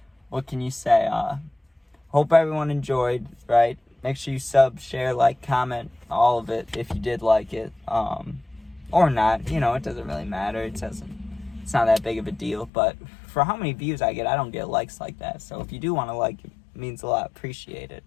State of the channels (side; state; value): right; drops out; at 12.7 s